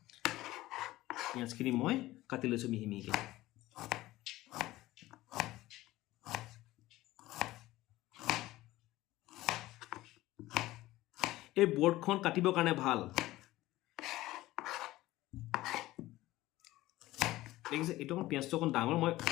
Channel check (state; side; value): quieter; right; 17.0 dB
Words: পিঁয়াজখিনি মই কাটি লৈছোঁ মিহি মিহিকৈ এই বৰ্ডখন কাটিবৰ কাৰণে ভাল দেখিছে এইটো অকণ পিঁয়াজটো অকণ ডাঙৰ মই